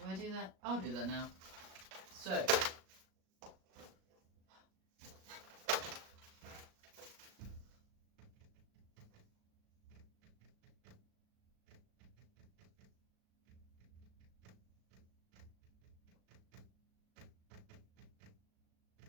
I do that? I'll do that now. So,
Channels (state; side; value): late; left; 38 ms